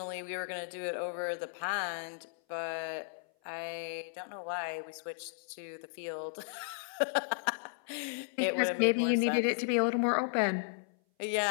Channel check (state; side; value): silent; right; 55 dB below the other